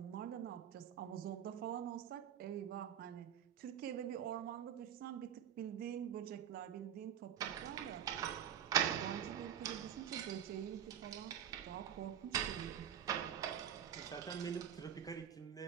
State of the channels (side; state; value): left; quieter; 9.3 dB